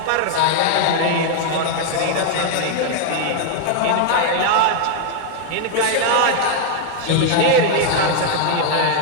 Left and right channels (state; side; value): different; both; correlation 0.00